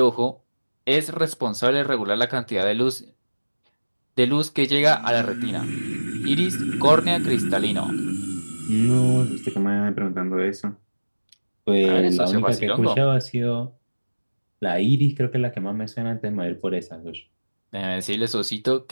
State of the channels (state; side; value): inverted; both; correlation -1.00